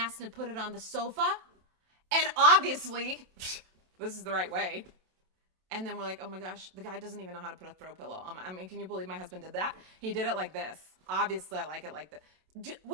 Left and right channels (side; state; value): left; late; 27 ms